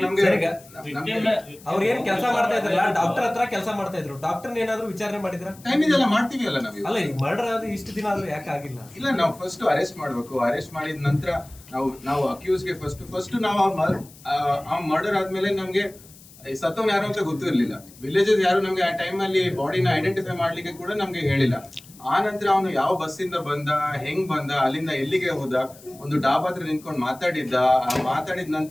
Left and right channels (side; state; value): left; noise; hiss, 22 dB below the sound